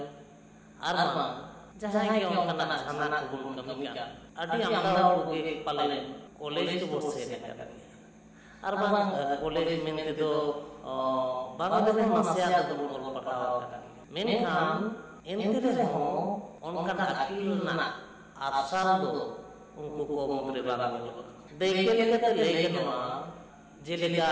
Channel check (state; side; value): identical; both; correlation 1.00